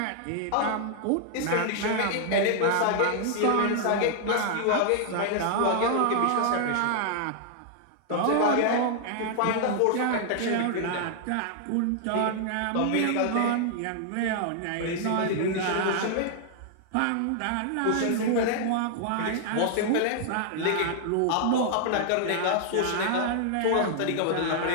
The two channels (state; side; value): different; both; correlation -0.01